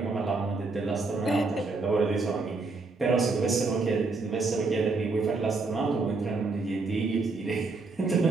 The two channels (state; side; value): quieter; left; 3.8 dB